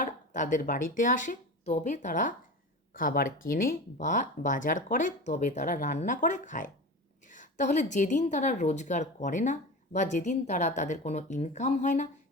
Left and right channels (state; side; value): normal; both; correlation 0.29